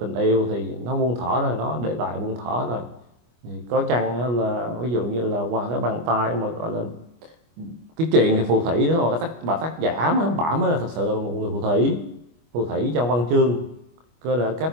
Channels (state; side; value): late; left; 25 ms